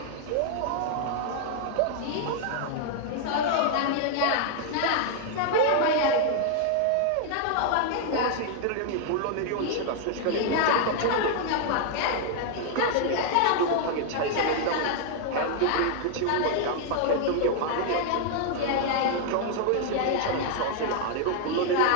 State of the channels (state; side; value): different; both; correlation 0.00